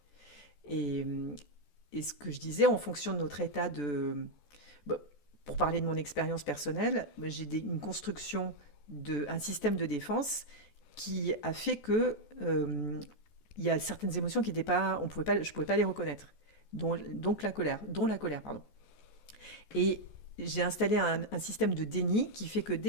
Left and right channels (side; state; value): right; late; 14 ms